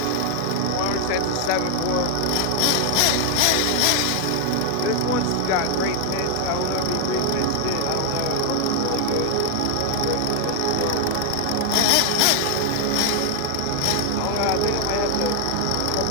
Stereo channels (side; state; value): both; different; correlation 0.00